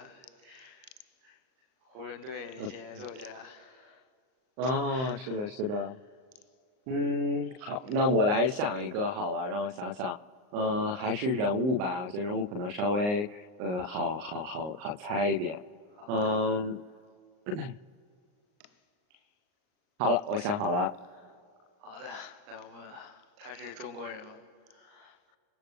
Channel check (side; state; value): left; late; 39 ms